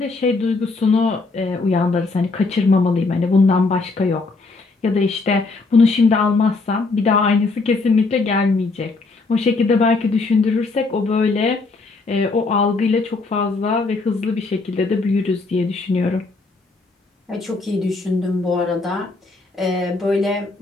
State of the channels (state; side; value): quieter; right; 3.7 dB